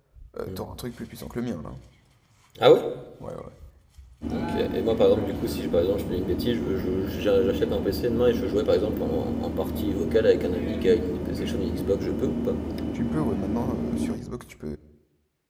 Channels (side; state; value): both; identical; correlation 1.00